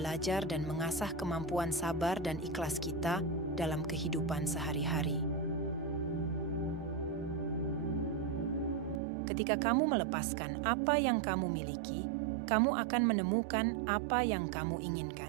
dan mengasah kemampuan sabar dan ikhlas kita dalam kehidupan sehari-hari. Ketika kamu melepaskan apa yang kamu miliki, kamu akan menemukan apa yang kamu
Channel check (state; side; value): drops out; left; at 9.0 s